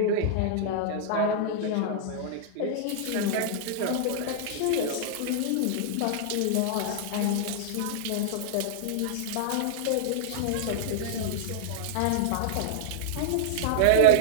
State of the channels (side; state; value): both; different; correlation -0.01